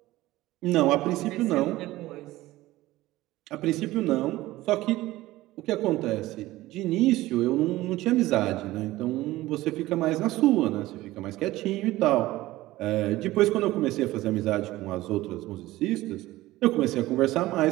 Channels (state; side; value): quieter; left; 17.3 dB